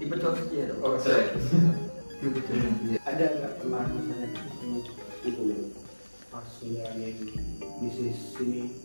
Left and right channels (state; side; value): inverted; both; correlation -1.00